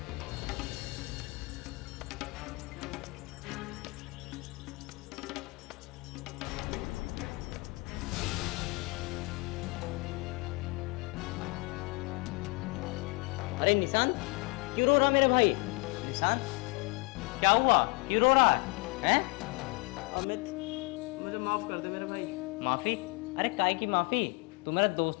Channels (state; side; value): quieter; right; 28.8 dB